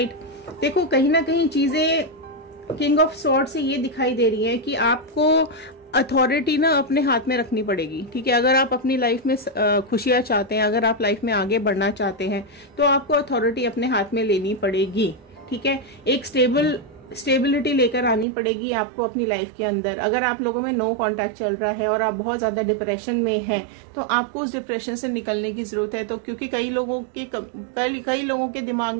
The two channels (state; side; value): drops out; left; at 18.2 s